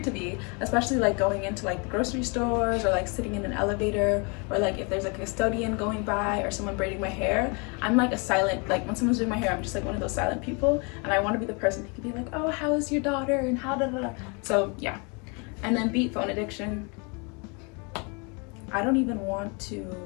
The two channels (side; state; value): right; quieter; 32.7 dB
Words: to be, especially like going into like the grocery stores or like sitting in an elevator or like if there's a custodian going by or someone braiding my hair. I'm like a silent, like when someone's doing my hair, I'm just like one of those silent people and I want to be the person who can be like, oh, how is your daughter and how da da da. So yeah. And then beat phone addiction. I don't even want to